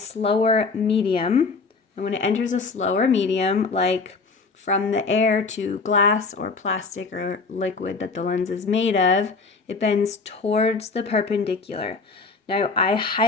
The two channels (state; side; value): quieter; right; 4.3 dB